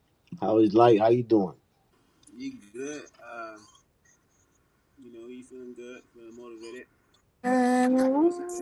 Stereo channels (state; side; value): identical; both; correlation 1.00